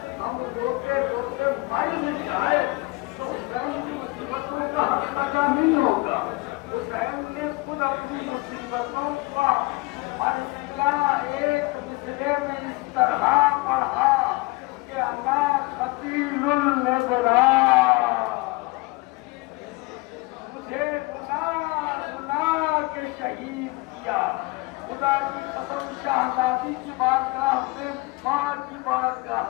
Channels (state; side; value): quieter; right; 23.9 dB